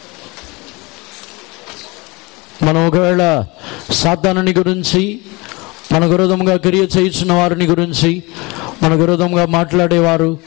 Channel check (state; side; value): quieter; right; 25.2 dB